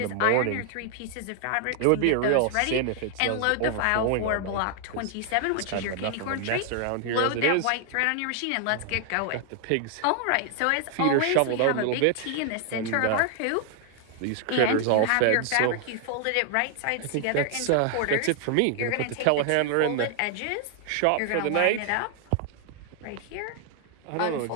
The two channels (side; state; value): both; different; correlation 0.00